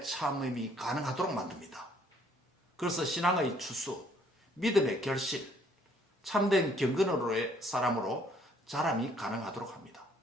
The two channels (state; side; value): normal; both; correlation 0.64